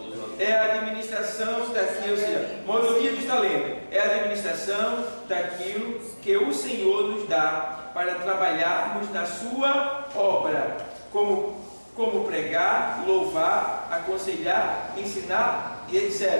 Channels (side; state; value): both; inverted; correlation -1.00